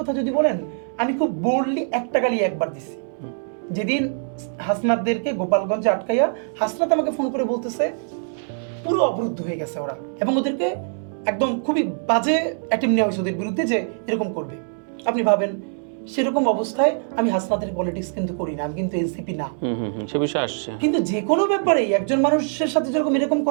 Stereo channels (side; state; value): left; silent; digital silence